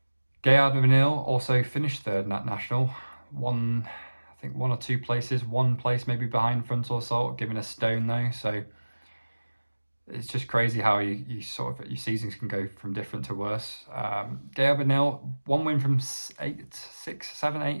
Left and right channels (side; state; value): both; inverted; correlation -1.00